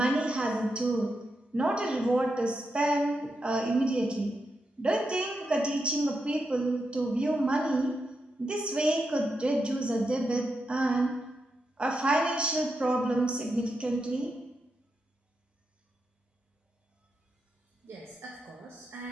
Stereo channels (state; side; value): normal; both; correlation 0.86